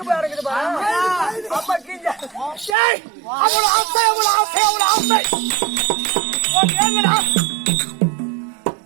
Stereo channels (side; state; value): left; drops out; at 2.8 s